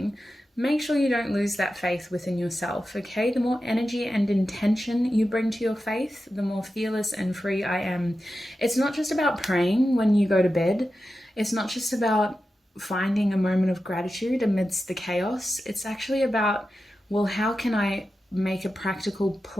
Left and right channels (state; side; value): normal; both; correlation 0.92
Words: make sure you don't lose that faith within yourself, okay? The more energy and intention you bring to your faith, the more fearless and free I am. It's not just about praying when you go to bed. It's not just about finding a moment of gratitude amidst the chaos. It's actually about, well, how can I make a practical